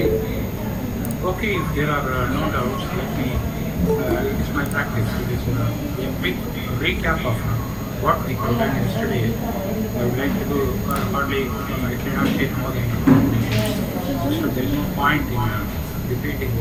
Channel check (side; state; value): both; identical; correlation 1.00